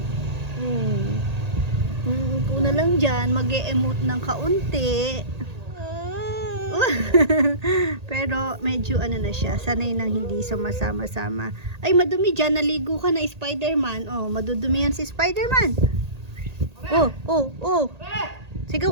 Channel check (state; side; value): late; left; 1.8 ms